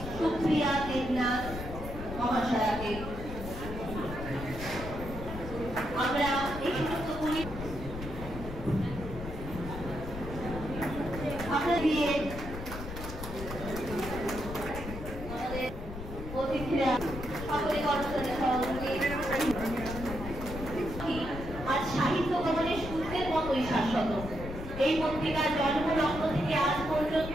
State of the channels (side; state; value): left; noise; rumble, 9 dB below the sound